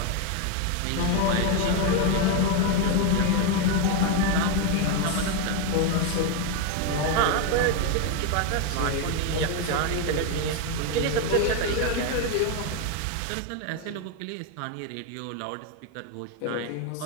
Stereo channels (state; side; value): different; both; correlation 0.01